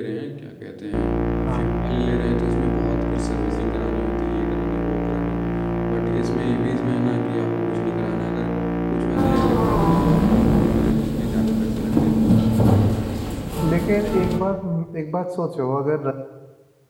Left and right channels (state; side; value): identical; both; correlation 1.00